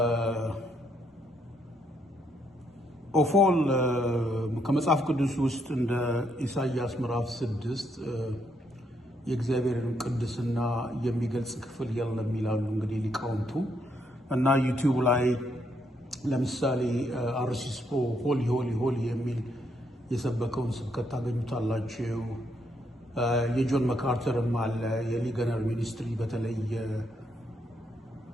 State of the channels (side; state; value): both; normal; correlation 0.75